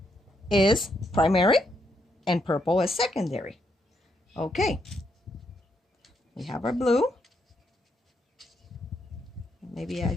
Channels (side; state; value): both; normal; correlation 0.77